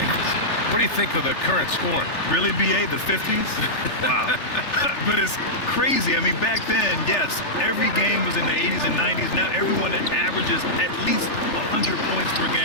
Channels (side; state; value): right; late; 3.4 ms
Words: What do you think of the current scoring? Really, BA, the 50s? Wow. But it's crazy. Back then, yes, every game was in the 80s and 90s. Now everyone averages at least 100 points per